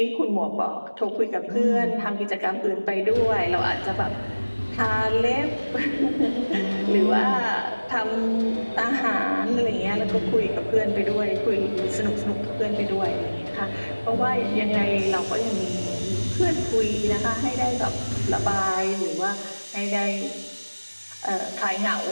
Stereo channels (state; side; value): inverted; both; correlation -1.00